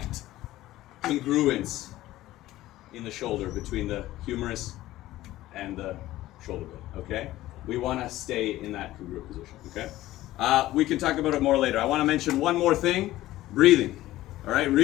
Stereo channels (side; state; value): right; quieter; 15.8 dB